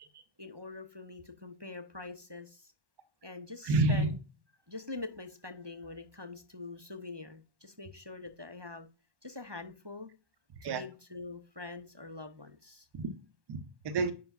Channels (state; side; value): late; left; 1.2 ms